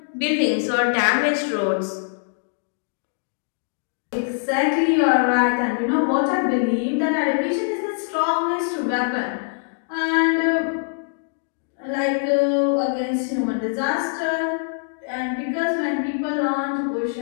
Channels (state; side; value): silent; right; digital silence